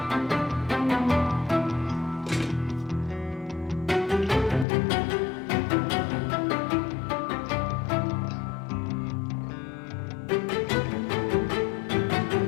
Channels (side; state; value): right; drops out; at 4.7 s